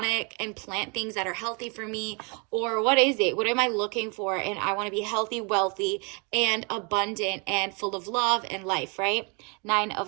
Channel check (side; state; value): left; quieter; 33.6 dB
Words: and plant things that are healthy for me? Or what is it? What am I looking for? And I want to be healthy, wealthy, and abundant, and full of love and life, right? 9